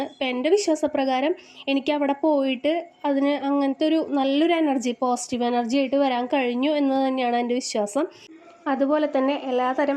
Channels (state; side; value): identical; both; correlation 1.00